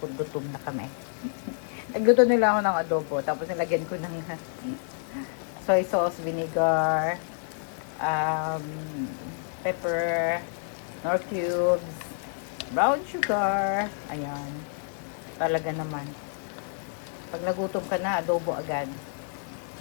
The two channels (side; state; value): right; silent; digital silence